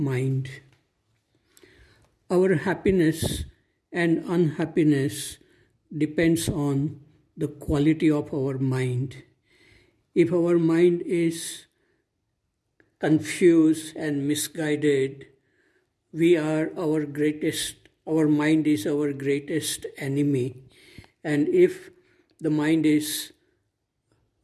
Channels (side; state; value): both; identical; correlation 1.00